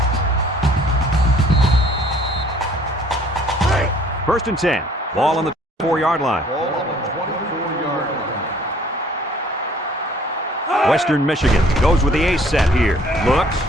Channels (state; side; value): normal; both; correlation 0.57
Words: First and 10. Ball on the 4-yard line. Ball on the 24-yard line. Western Michigan goes with the ace set here. Looks.